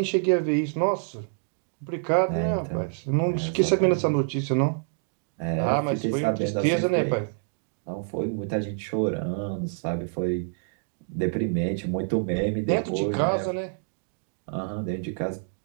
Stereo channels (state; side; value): silent; left; digital silence